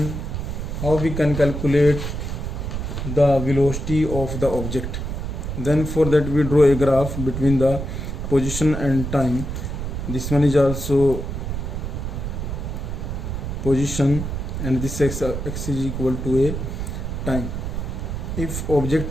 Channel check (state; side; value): noise; right; rumble, 4 dB below the sound